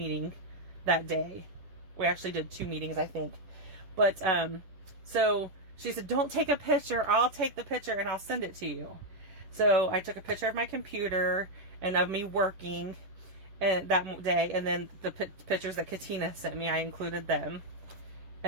that day. We actually did 2 meetings, I think. But so she said, don't take a picture, I'll take the picture and I'll send it to you. So I took a picture of my computer and of me working and that day, and then the pictures that Katina sent me, I included them.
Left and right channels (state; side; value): late; left; 11 ms